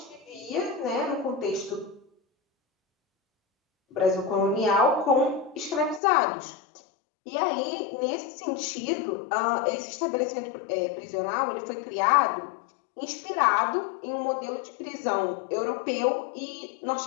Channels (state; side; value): drops out; right; at 6.0 s